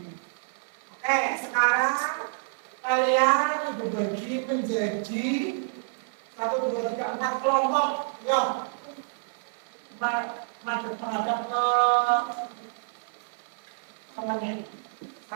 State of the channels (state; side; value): silent; left; 59 dB below the other